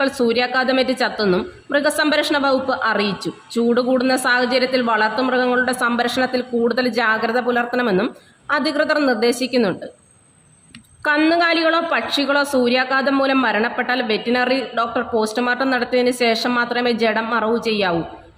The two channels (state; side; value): identical; both; correlation 1.00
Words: സൂര്യാഘാതമേറ്റ് ചത്തെന്നും മൃഗസംരക്ഷണ വകുപ്പ് അറിയിച്ചു. ചൂട് കൂടുന്ന സാഹചര്യത്തിൽ വളർത്തുമൃഗങ്ങളുടെ സംരക്ഷണത്തിൽ കൂടുതൽ ജാഗ്രത പുലർത്തണമെന്നും അധികൃതർ നിർദ്ദേശിക്കുന്നുണ്ട്. കന്നുകാലികളോ പക്ഷികളോ സൂര്യാഘാതം മൂലം മരണപ്പെട്ടാൽ വെറ്റിനറി ഡോക്ടർ പോസ്റ്റ്മോർട്ടം നടത്തിയതിന് ശേഷം മാത്രമേ ജഡം മറവു ചെയ്യാവൂ.